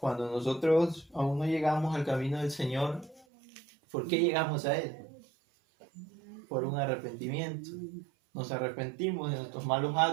nosotros aún no llegamos al camino del Señor, ¿por qué llegamos a Él? Por un arrepentimiento. Nos arrepentimos de nuestros malos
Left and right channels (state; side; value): drops out; left; at 3.2 s